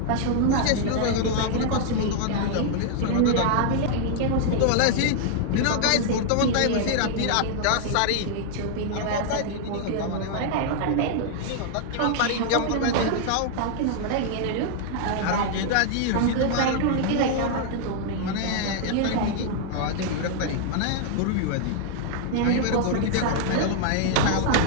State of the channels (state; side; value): different; both; correlation 0.00